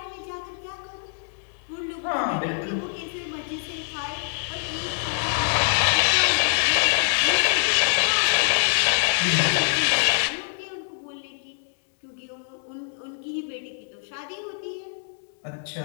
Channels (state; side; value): silent; right; 62 dB below the other